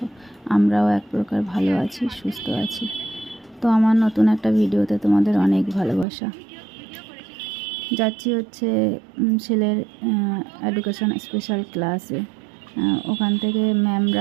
আমরাও এক প্রকার ভালো আছি, সুস্থ আছি। তো আমার নতুন একটা ভিডিওতে তোমাদের অনেক ভালোবাসা। যাচ্ছি হচ্ছে ছেলের এডুকেশন স্পেশাল ক্লাসে। ওখান থেকে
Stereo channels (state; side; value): drops out; left; at 6.1 s